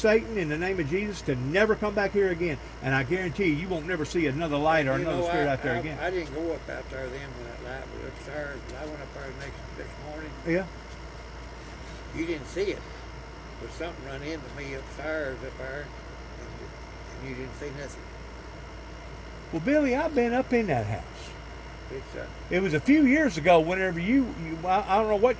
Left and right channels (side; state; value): both; identical; correlation 1.00